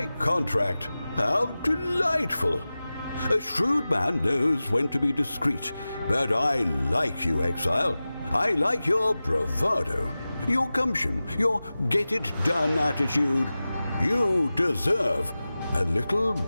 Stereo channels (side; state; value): both; inverted; correlation -0.96